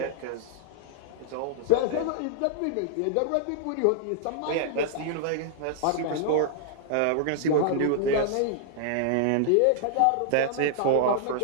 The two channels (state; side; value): different; both; correlation -0.01